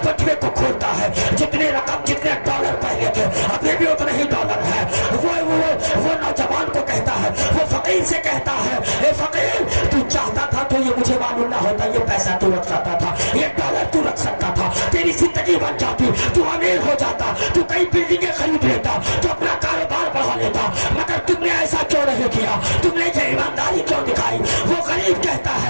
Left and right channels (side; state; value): both; inverted; correlation -1.00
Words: पटवे को खोलता है, जितने रकम जितने डॉलर पहले थे अभी भी उतने ही डॉलर है। वो नौजवान को कहता है, वो फकीर से कहता है, ए फकीर तू चाहता था तो ये मुझे मालूम ना होता, ये पैसा तू रख सकता था, ये डॉलर तू रख सकता था, तेरी जिंदगी बन जाती, तू अमीर हो जाता, तू कई बिल्डिंगें खरीद लेता, तू अपना कारोबार बढ़ा लेता, मगर तुमने ऐसा क्यों नहीं किया? तुमने ये ईमानदारी क्यों दिखाई? वो गरीब कहता है